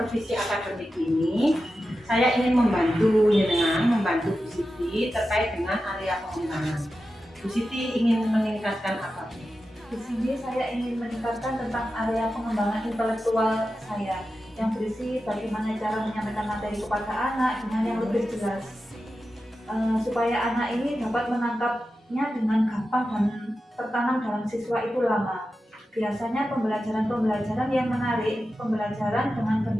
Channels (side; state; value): both; normal; correlation 0.92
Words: akademik ini, saya ingin membantu Bu Siti terkait dengan area pengembangan. Bu Siti ingin meningkatkan apa? Di sini saya ingin meningkatkan tentang area pengembangan intelektual saya, yang berisi bagaimana cara menyampaikan materi kepada anak dengan yang lebih jelas, supaya anak ini dapat menangkapnya dengan gampang dan tertanam dalam siswa itu lama. Biasanya pembelajaran yang menarik, pembelajaran dengan